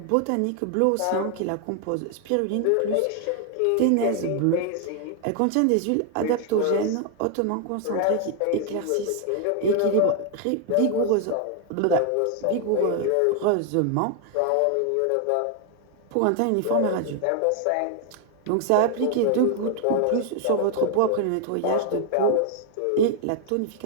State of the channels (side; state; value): both; different; correlation 0.00